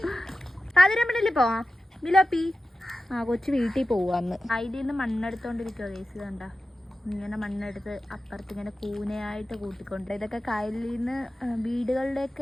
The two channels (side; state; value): both; normal; correlation 0.94